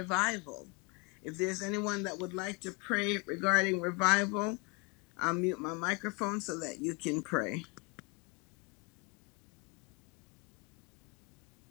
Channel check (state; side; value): quieter; right; 28.3 dB